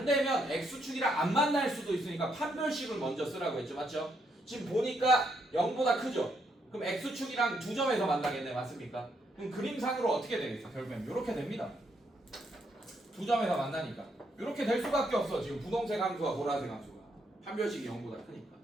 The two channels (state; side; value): normal; both; correlation 0.76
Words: 되면 x축이랑 안 만날 수도 있으니까 판별식을 먼저 쓰라고 했죠. 맞죠? 지금 보니까 0보다 크죠? 그럼 x축이랑 두 점에서 만나겠네. 맞습니까? 그럼 그림상으로 어떻게 되겠어? 결국엔 이렇게 됩니다. 두 점에서 만나니까 이렇게 될 수밖에 없어. 지금 분홍색 함수와 보라색 함수가 판별식이 0보다 크니까.